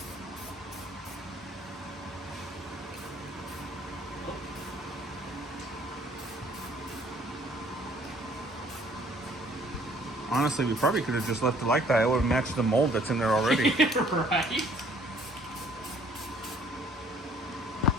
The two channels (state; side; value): normal; both; correlation 0.58